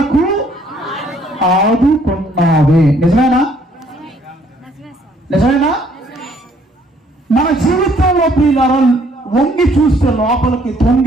ఆదుకున్నావే. నిజమేనా? నిజమేనా? మన జీవితంలో ప్రియులారా వంగి చూస్తే, లోపలికి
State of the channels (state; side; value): normal; both; correlation 0.63